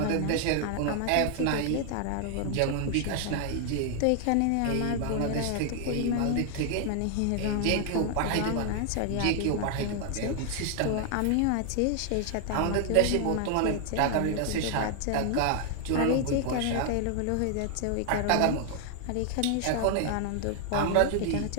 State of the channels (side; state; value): both; different; correlation 0.00